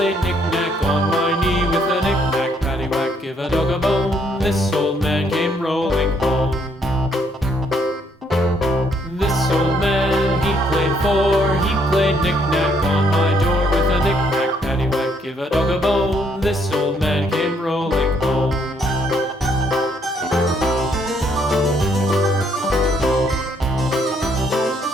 knick-knack on my knee with a knick-knack, paddywhack, give a dog a bone. This old man came rolling home. This old man, he played four. He played knick-knack on my door with a knick-knack, paddywhack, give a dog a bone. This old man came rolling home.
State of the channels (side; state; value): both; normal; correlation 0.69